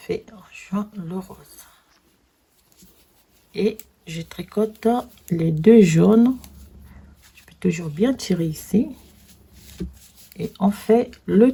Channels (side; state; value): both; identical; correlation 1.00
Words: on joint le rose. Et je tricote les 2 jaunes. Je peux toujours bien tirer ici. Et on fait